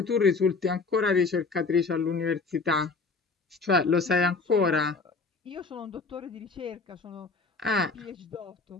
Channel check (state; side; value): quieter; right; 4.2 dB